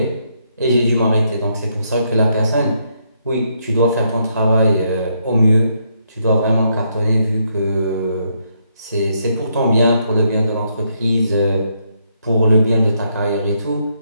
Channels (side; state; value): both; inverted; correlation -0.76